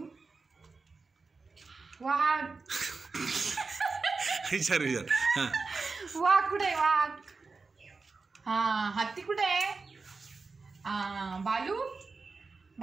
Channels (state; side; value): quieter; left; 4.3 dB